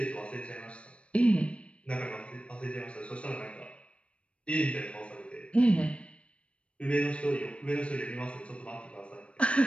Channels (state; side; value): late; right; 0.061 ms